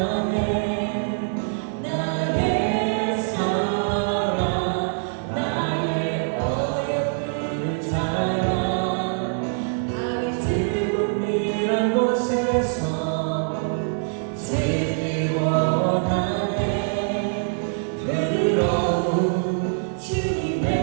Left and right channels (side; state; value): left; silent; 62 dB below the other